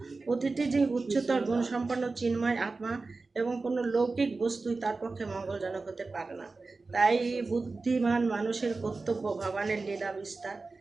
প্রতিটি যে উচ্চতর গুণসম্পন্ন চিন্ময় আত্মা এবং কোনো লৌকিক বস্তুই তার পক্ষে মঙ্গলজনক হতে পারে না। তাই বুদ্ধিমান মানুষের কর্তব্য ভগবানের লীলা বিস্তার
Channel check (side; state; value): left; quieter; 3.8 dB